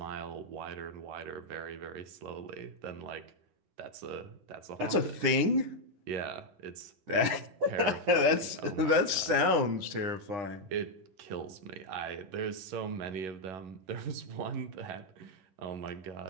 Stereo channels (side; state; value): left; late; 10 ms